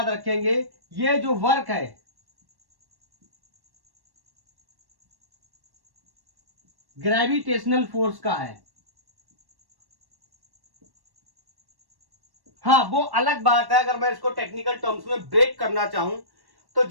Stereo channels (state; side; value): late; left; 1.1 ms